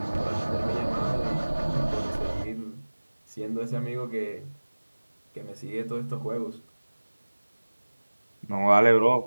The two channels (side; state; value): both; inverted; correlation -1.00